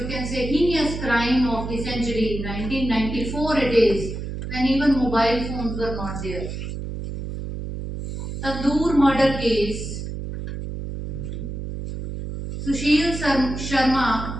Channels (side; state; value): right; noise; hum, 6 dB below the sound